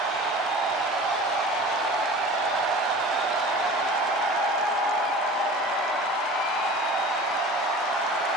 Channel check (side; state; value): both; normal; correlation 0.39